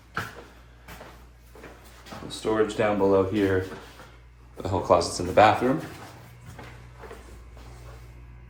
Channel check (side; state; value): both; identical; correlation 1.00